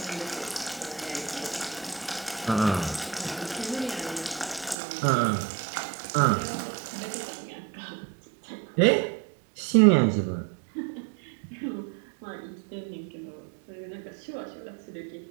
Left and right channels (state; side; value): drops out; left; at 4.8 s